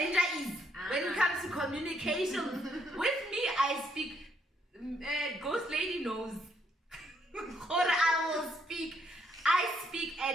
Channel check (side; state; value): both; normal; correlation 0.72